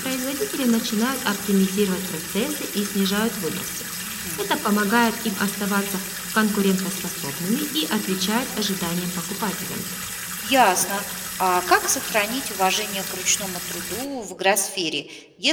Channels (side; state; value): both; identical; correlation 1.00